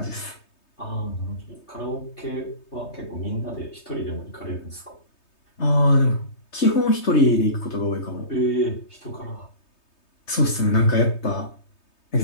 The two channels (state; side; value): late; right; 3.2 ms